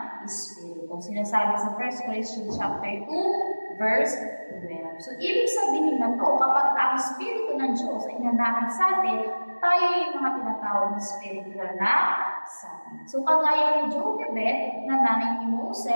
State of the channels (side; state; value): both; inverted; correlation -1.00